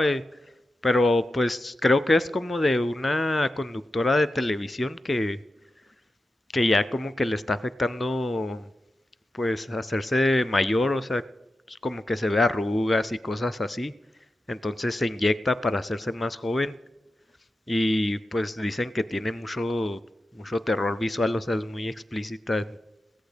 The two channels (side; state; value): both; normal; correlation 0.91